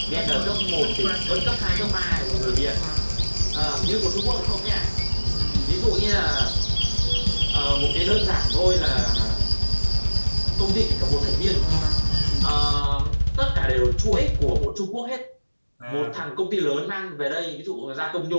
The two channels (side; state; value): both; inverted; correlation -1.00